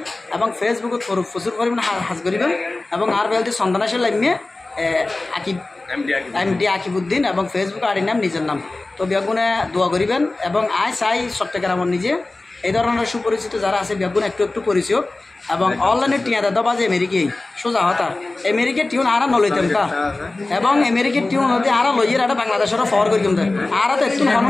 এবং ফেসবুকত প্রচুর পরিমাণে হাজ করিবেন এবং আর বেলদি সন্তানাশের লাইমে MD আকিবুদ্দিন এবং ফেসবুক আড়ি নাম নিজের নাম তো বেগুনে দোয়া করিবেন এবং চাই চট্টগ্রামের নিজে এই ধরনের সুপরিচিত যারা আছে বেগুন একটু পরিচয় এবং অনলাইনে টিয়া দাদা বাজে আমেরিকাই সোজা হতা আমেরিকার টিউন আরা নলইতাম তা এবং আমেরিকার টিউন নদী আরা লইয়ের একটা বাংলাদেশেরও ফর করি কিন্তু আরা তো একটু হন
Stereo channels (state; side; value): quieter; right; 3.1 dB